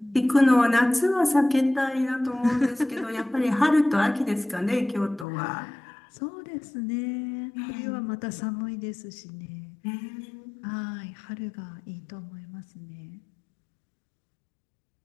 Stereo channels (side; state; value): right; drops out; at 5.2 s